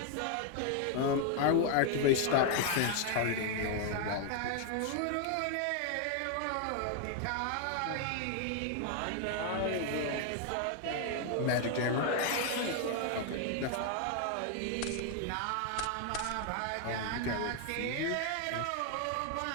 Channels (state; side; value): different; both; correlation 0.00